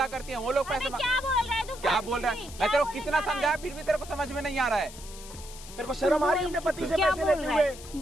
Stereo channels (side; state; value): left; noise; hiss, 16 dB below the sound